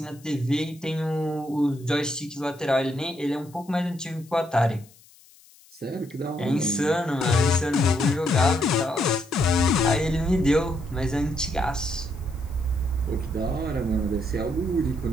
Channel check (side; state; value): left; noise; hiss, 26 dB below the sound